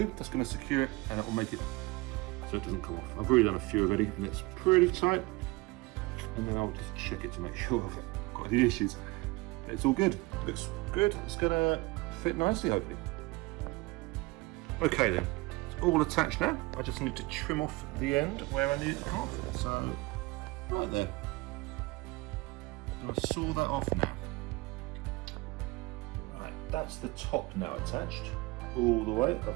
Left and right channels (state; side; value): quieter; left; 23.2 dB